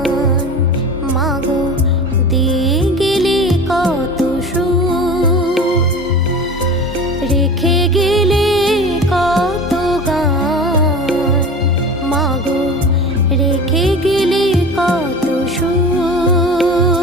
মাগো, দিয়ে গেলে কত সুর। রেখে গেলে কত গান মাগো, রেখে গেলে কত সুর।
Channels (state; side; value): normal; both; correlation 0.34